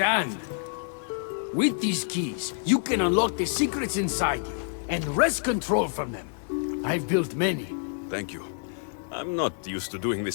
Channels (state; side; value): silent; right; digital silence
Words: With these keys, you can unlock the secrets inside you, and wrest control from them. I've built many. Thank you. I'm not used to doing